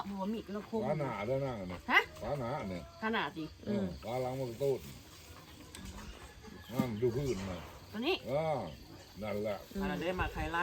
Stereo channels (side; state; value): both; identical; correlation 1.00